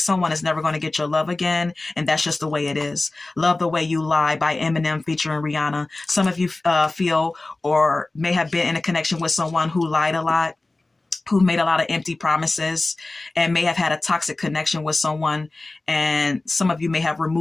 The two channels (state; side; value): quieter; right; 3.0 dB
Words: is never going to get your love again, and that's just the way it is. Love the Way You Lie by Eminem featuring Rihanna. Some of you feel or may have been in a connection with someone who lied a lot, who made a lot of empty promises, and may have had a toxic connection with someone. And some of you may have